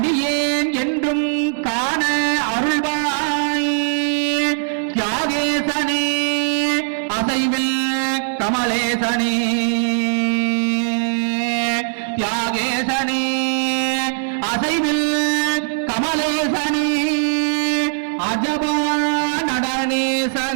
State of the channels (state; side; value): silent; left; 66 dB below the other